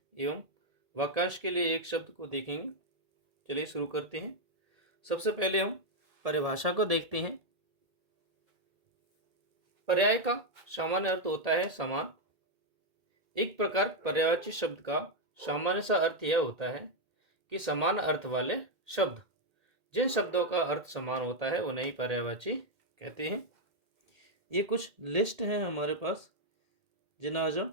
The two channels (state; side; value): late; left; 1.8 ms